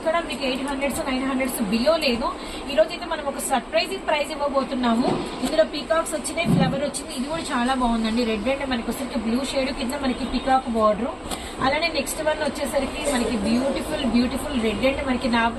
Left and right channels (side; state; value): both; identical; correlation 1.00